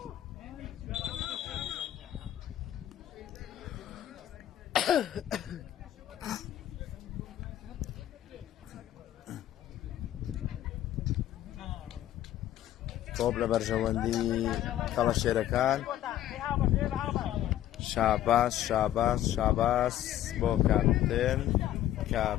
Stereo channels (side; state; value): right; quieter; 12.5 dB